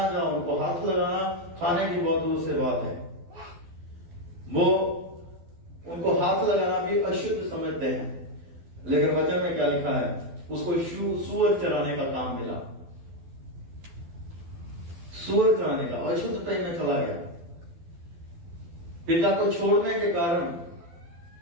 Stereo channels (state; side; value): late; left; 12 ms